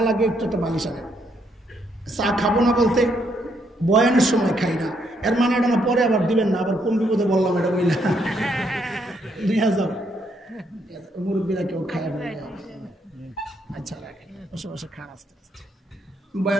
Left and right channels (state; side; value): normal; both; correlation 0.74